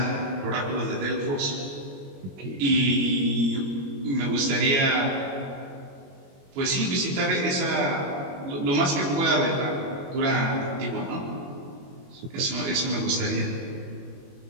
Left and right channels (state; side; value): late; left; 21 ms